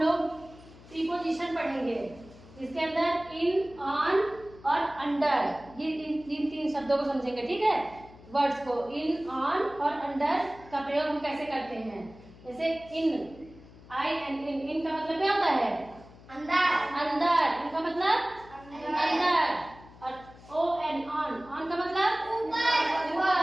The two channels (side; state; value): left; noise; hum, 21 dB below the sound